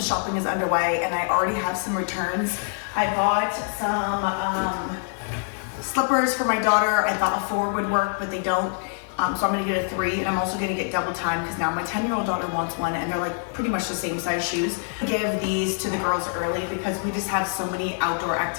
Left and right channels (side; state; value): right; silent; 62 dB below the other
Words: Christmas shopping is underway and I already have some returns. I bought some slippers for my daughter. I thought a 4 would work, but they don't. So I'm gonna get a 3, and I'm also gonna get double time because now my 10-year-old daughter wants one, and they're like pretty much the same size shoes. I give these to the girls early because we just have so many outdoor